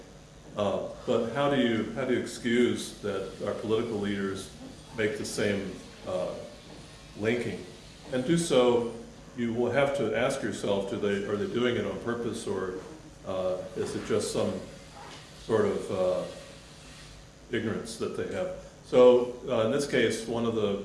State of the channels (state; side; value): identical; both; correlation 1.00